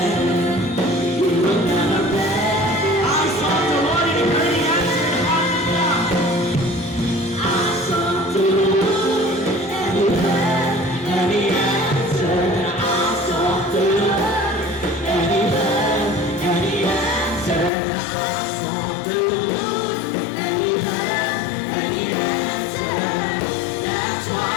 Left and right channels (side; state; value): right; drops out; at 17.7 s